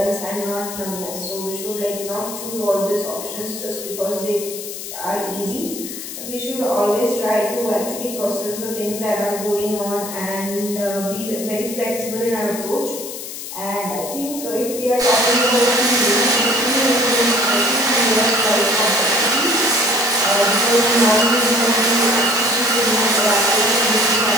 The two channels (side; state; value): left; noise; hiss, 9 dB below the sound